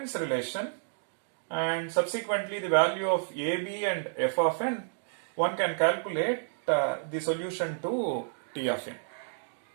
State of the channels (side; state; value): left; silent; digital silence